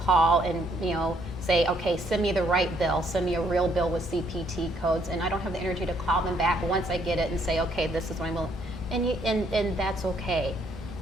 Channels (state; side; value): normal; both; correlation 0.69